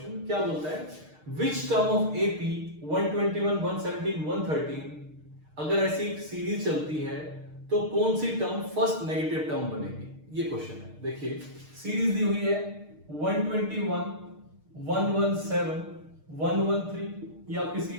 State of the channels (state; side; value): late; left; 6.5 ms